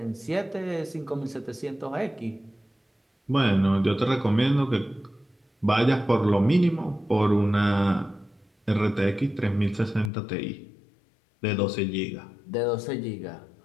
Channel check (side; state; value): right; drops out; at 10.1 s